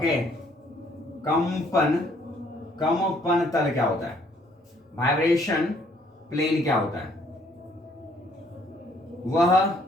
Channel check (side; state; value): both; normal; correlation 0.64